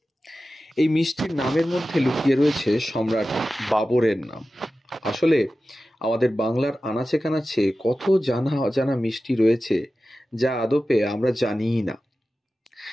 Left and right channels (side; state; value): both; normal; correlation 0.94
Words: এই মিষ্টির নামের মধ্যে লুকিয়ে রয়েছে সম্রাট বাবরের নাম। আসলে আমাদের বাংলার আনাচে কানাচে কত জানা অজানা মিষ্টি রয়েছে যা আদপে আমরা জানিই না।